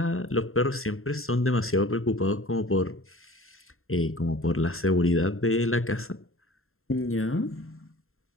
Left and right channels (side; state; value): right; late; 0.61 ms